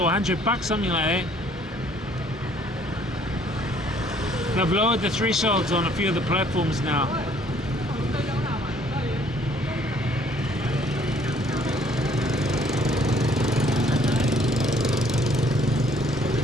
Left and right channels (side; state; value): both; normal; correlation 0.61